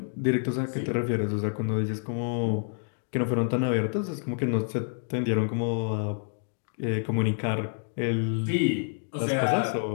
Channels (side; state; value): right; silent; 59 dB below the other